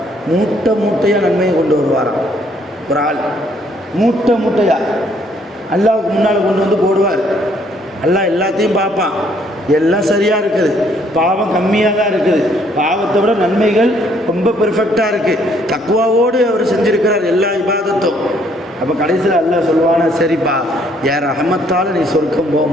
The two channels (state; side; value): normal; both; correlation 0.66